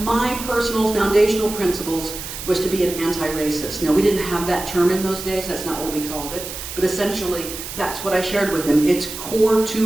my personal foundational principles was to be an anti-racist. Now, we didn't have that term in those days, that's not what we called it, but essentially that's what I shared with them. It's core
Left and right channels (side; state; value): right; noise; hiss, 9 dB below the sound